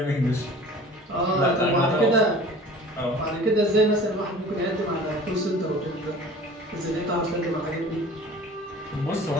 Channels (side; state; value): both; normal; correlation 0.43